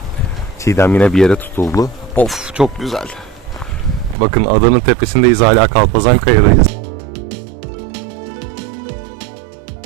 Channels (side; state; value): left; drops out; at 4.2 s